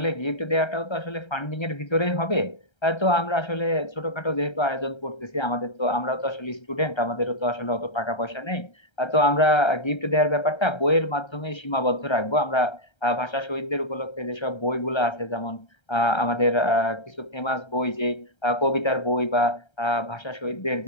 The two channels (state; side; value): late; right; 1.3 ms